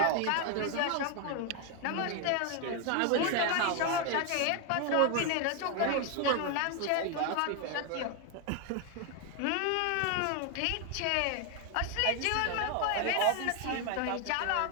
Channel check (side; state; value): both; different; correlation 0.01